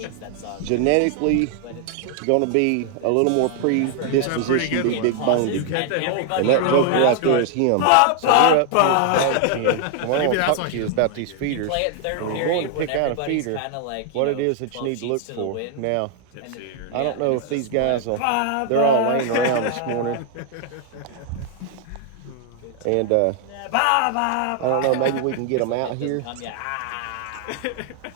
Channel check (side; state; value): both; different; correlation 0.00